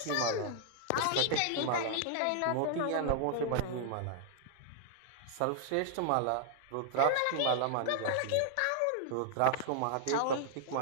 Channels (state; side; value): different; both; correlation -0.01